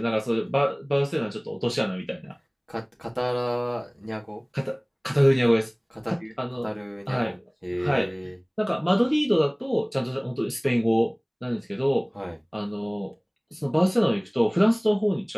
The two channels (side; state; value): both; identical; correlation 1.00